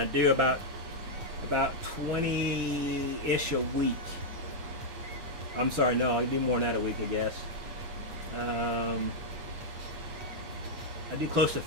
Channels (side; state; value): left; late; 8.4 ms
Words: do about 20-ish a week. I'm sorry, no, I do more than that a week, I guess. I do close to